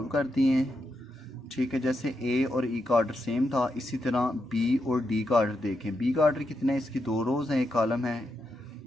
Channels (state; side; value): normal; both; correlation 0.84